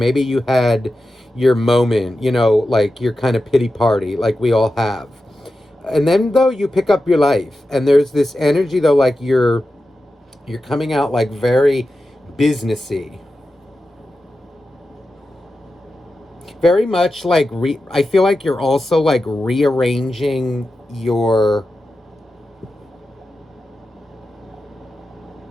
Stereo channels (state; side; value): normal; both; correlation 0.91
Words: you had your moment, like your kind of pity party, like we all have. And then though you pick up your life, and there's this energy though, like you're coming out like very businessy, very much like I feel like you're also like rearranging your,